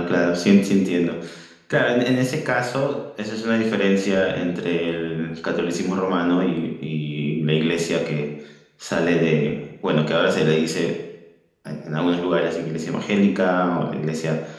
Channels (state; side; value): identical; both; correlation 1.00